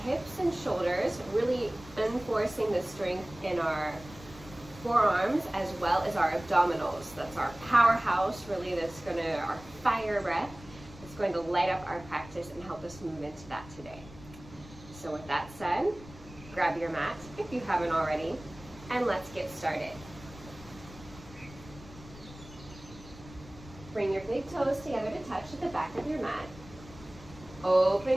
hips and shoulders, really enforcing the strength in our forearms as well as our abdominals. That's our powerhouse, really, our fire breath. It's going to light up our practice and help us move into that today. So with that said, grab your mat if you haven't already, and let's get started. Bring your big toes together to touch at the back of your mat.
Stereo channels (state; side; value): noise; left; rumble, 18 dB below the sound